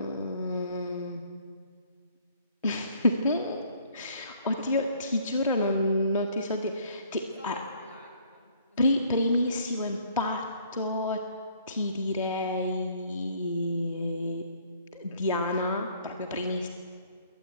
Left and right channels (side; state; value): both; inverted; correlation -0.60